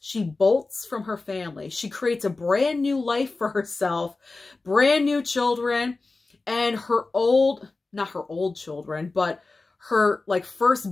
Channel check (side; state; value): right; quieter; 3.6 dB